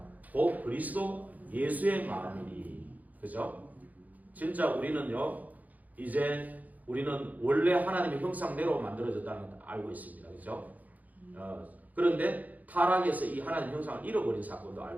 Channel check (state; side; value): late; left; 0.079 ms